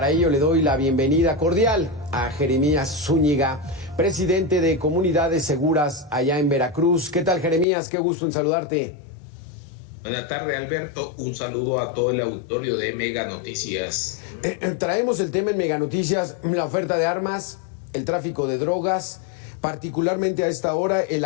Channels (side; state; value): right; drops out; at 7.7 s